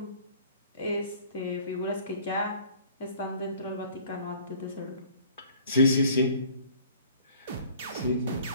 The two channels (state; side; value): inverted; both; correlation -0.53